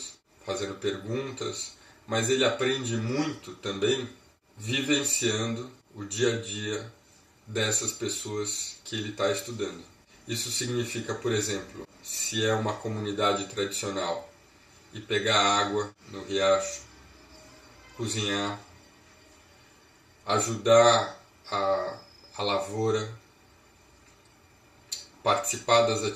fazendo perguntas, mas ele aprende muito também vivenciando o dia a dia dessas pessoas que ele está estudando. Isso significa, por exemplo, se é uma comunidade tradicional, e pegar água no riacho, cozinhar, ajudar a lavoura, participar das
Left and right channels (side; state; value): both; identical; correlation 1.00